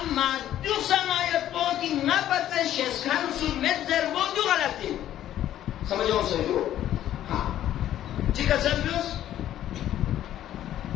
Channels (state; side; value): quieter; right; 12.1 dB